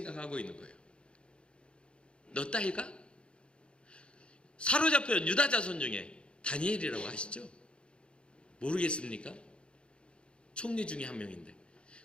있는 거예요. 너 따위가? 사로잡혀온 유다 자손 중에 다니엘이라고 아시죠? 모르겠습니까? 총리 중에 한 명인데.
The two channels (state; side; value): late; right; 0.056 ms